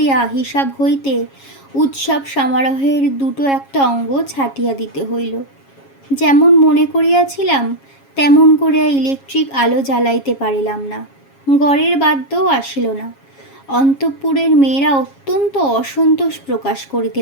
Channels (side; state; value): right; late; 7.3 ms